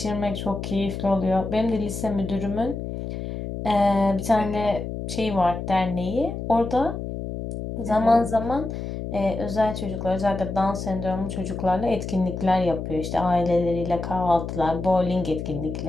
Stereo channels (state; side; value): noise; left; hum, 6 dB below the sound